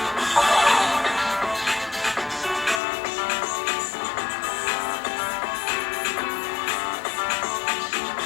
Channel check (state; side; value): drops out; right; at 2.8 s